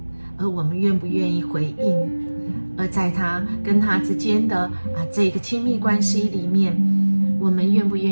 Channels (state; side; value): inverted; both; correlation -1.00